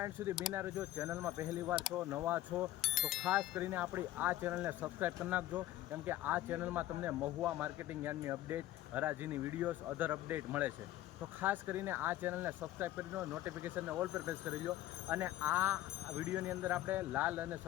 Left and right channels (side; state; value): right; quieter; 14.7 dB